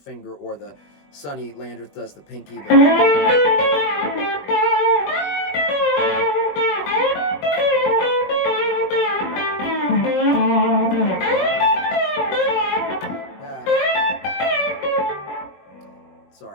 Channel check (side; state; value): right; late; 21 ms